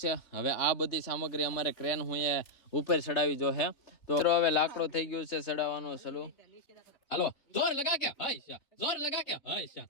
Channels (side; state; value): right; late; 3.5 ms